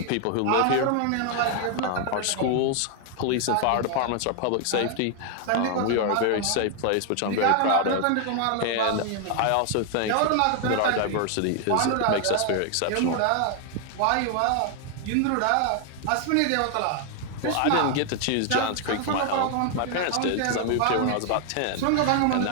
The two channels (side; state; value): both; different; correlation 0.00